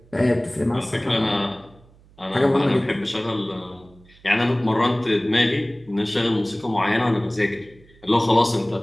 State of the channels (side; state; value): right; noise; hum, 27 dB below the sound